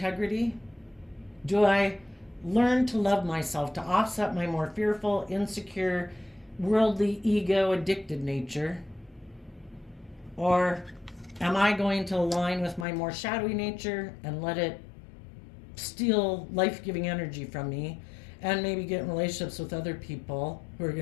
Do I learn to love myself to offset my more fearful, insecure, worldly, ego addicted nature? Or am I going to align with my more shadowy nature and let it steal life-giving energy from me, and maybe get in relationships with other people who are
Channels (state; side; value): drops out; right; at 12.9 s